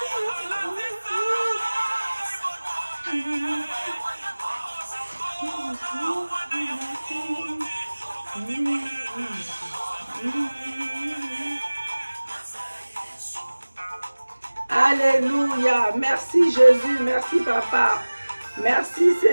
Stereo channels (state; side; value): inverted; both; correlation -1.00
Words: Alléluia. Merci Jésus, merci Papa. Merci